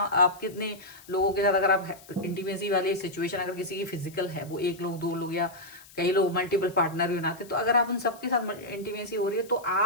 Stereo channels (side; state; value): left; noise; hiss, 22 dB below the sound